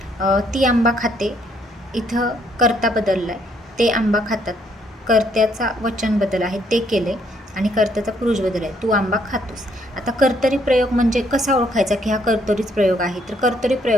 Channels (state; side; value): normal; both; correlation 0.69